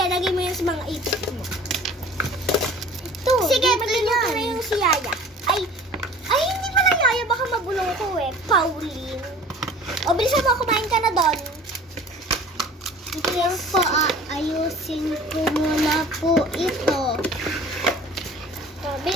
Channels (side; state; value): both; normal; correlation 0.45